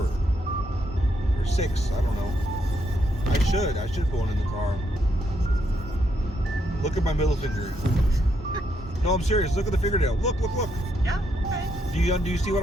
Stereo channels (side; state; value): both; normal; correlation 0.77